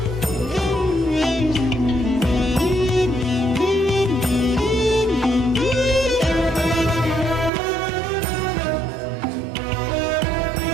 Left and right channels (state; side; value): drops out; left; at 7.5 s